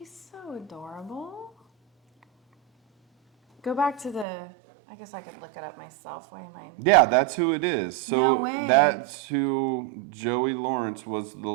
so adorable. Go back to the. I guess I could look it up myself. Why am I? Yeah, that's who it is. So No way. that's who Joey Lawrence was, the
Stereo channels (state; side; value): drops out; left; at 4.2 s